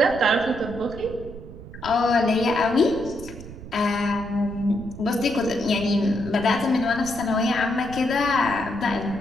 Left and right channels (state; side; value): noise; right; rumble, 14 dB below the sound